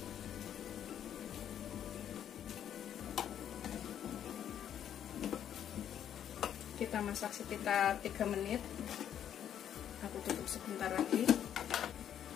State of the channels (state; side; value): quieter; right; 9.8 dB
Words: Kita masak sekitar 3 menit. Aku tutup sebentar lagi.